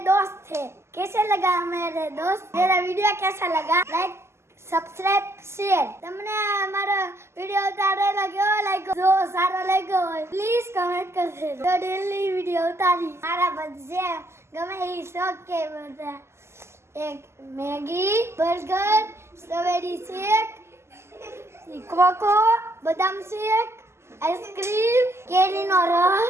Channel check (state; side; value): late; left; 0.13 ms